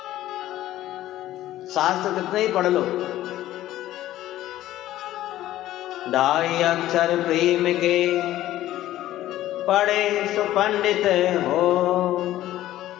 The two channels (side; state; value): right; quieter; 14.2 dB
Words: शास्त्र कितने ही पढ़ लो, ढाई अक्षर प्रेम के पढ़े सो पंडित हो।